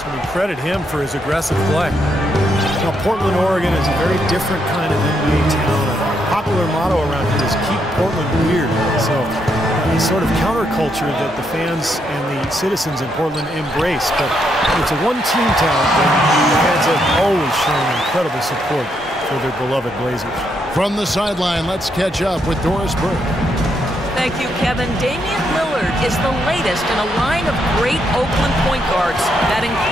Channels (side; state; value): both; normal; correlation 0.77